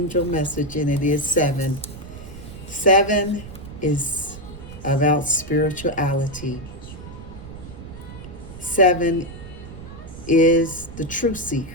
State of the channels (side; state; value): right; noise; rumble, 13 dB below the sound